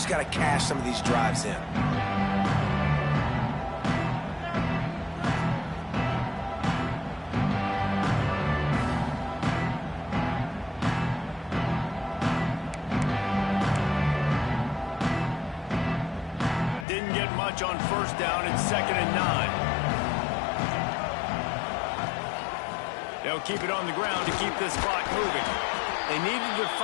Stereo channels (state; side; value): drops out; right; at 16.9 s